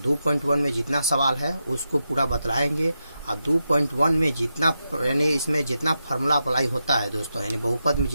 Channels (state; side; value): inverted; both; correlation -0.87